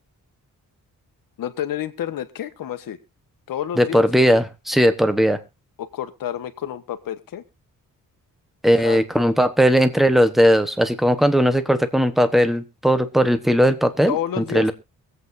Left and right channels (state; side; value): normal; both; correlation 0.86